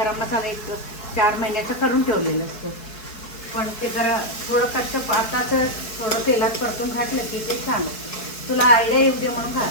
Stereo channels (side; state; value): right; late; 4.7 ms